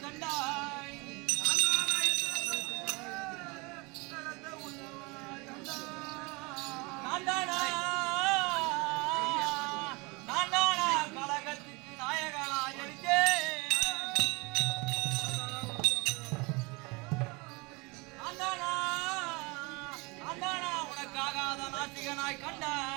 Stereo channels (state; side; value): quieter; left; 27.0 dB